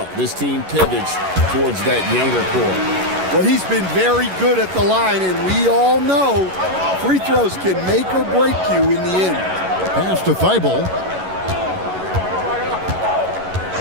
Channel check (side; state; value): left; late; 11 ms